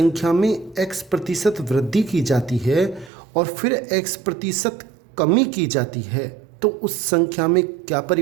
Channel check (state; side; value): drops out; left; at 3.1 s